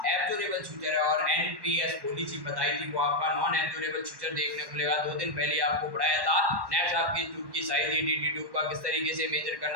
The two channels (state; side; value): late; left; 1.1 ms